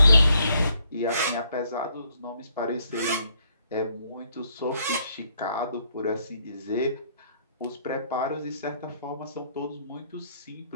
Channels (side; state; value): both; inverted; correlation -0.70